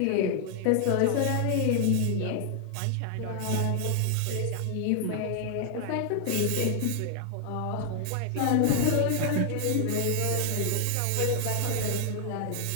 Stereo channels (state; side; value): different; both; correlation 0.00